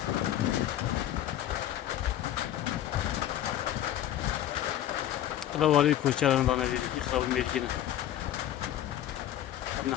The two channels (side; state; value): right; quieter; 12.1 dB